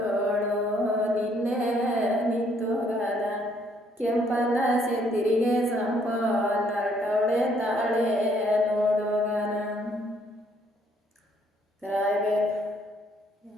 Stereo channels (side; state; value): both; normal; correlation 0.67